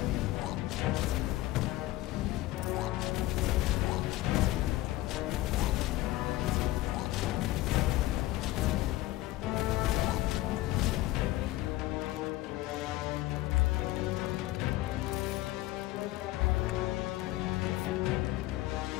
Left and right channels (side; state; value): right; quieter; 17.0 dB